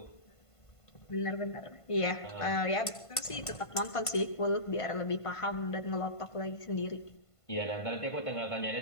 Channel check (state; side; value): late; right; 1.5 ms